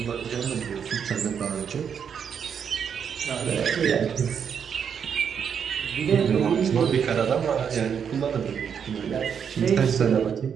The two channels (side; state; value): left; quieter; 7.4 dB